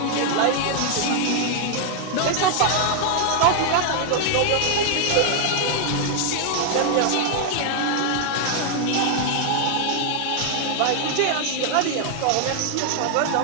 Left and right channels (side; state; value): both; different; correlation 0.00